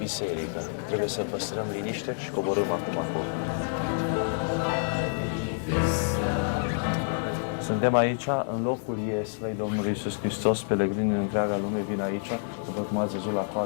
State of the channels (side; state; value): right; silent; digital silence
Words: Trebuie să păstrăm liniște și coborâm acum acolo. Suntem aici, în locul ieslei Domnului Iisus Hristos. Pelegrini în întreaga lume vin aici. După cum ați văzut, la